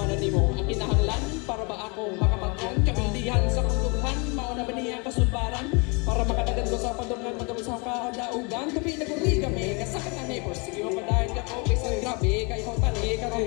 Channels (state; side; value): quieter; right; 31.3 dB